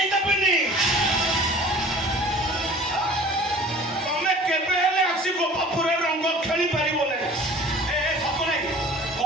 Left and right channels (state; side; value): normal; both; correlation 0.45